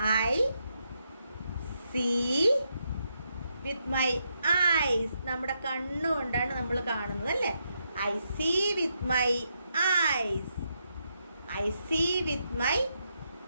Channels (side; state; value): both; inverted; correlation -0.81